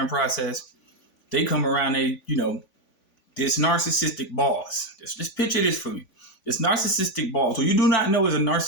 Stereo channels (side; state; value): right; late; 3.5 ms